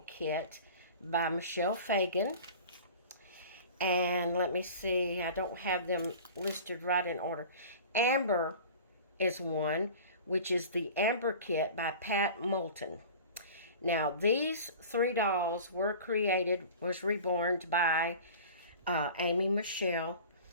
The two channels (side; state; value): both; inverted; correlation -0.40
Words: Kit by Michelle Fagan. And let me see, I don't have them listed right in order. Amber is one, which is the Amber Kit by Pat Moulton. Now, these 3 dolls was reborn by Amy Michelle.